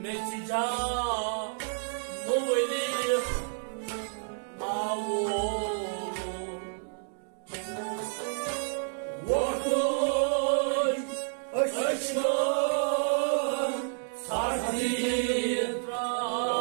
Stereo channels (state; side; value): silent; left; digital silence